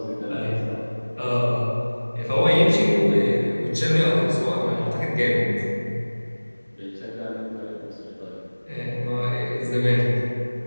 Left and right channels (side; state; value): both; inverted; correlation -1.00